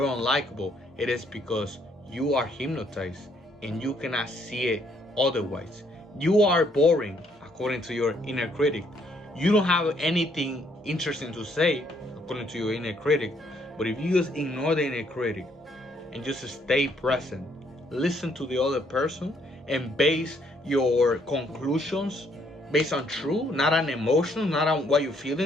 unlikable. It is because you are hypnotized and you cannot see it otherwise. You are boring according to your inner critic. You don't have anything interesting to say according to your inner critic. But if you just ignore the inner critic and just stay present, listen to the other person, and base your conclusions based on truth, not on emotions, not on what you're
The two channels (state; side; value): normal; both; correlation 0.69